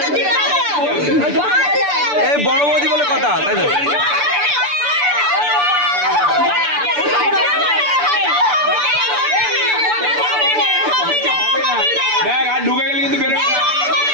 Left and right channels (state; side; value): late; left; 6.9 ms